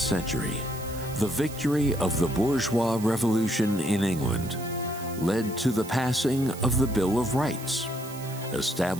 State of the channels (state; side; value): noise; right; hiss, 15 dB below the sound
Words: the victory of the bourgeois revolution in England led to the passing of the Bill of Rights,